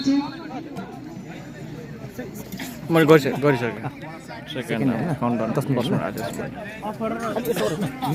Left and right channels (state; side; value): identical; both; correlation 1.00